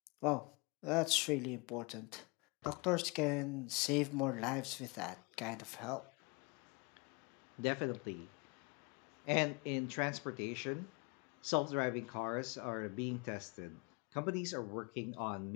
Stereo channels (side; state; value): right; quieter; 29.2 dB